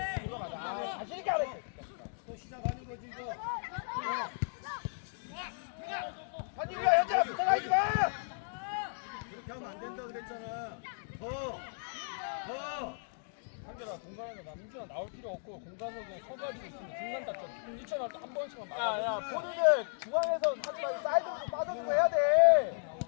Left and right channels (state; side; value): silent; right; digital silence